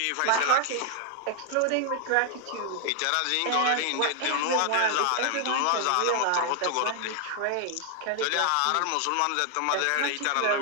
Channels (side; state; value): both; different; correlation 0.00